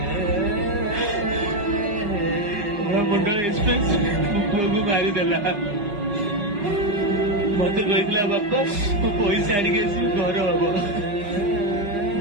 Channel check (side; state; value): left; late; 4.9 ms